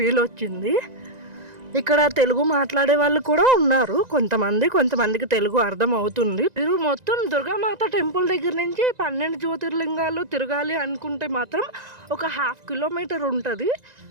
వచ్చింది. ఇక్కడ తెలుగు మాట్లాడే వాళ్ళు కూడా ఉన్నారు. కొంతమందికి తెలుగు అర్థం అవుతుంది. మీరు మొత్తం దుర్గామాత టెంపుల్ దగ్గర నుంచి 12 జ్యోతిర్లింగాలు తిరగాలి అనుకుంటే మాత్రం ఒక 1/2 కిలోమీటర్ ఉంటుంది.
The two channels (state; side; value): late; left; 1.9 ms